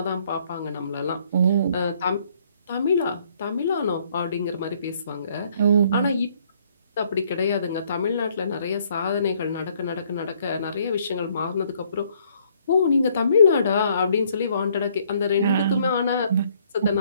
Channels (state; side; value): inverted; both; correlation -0.66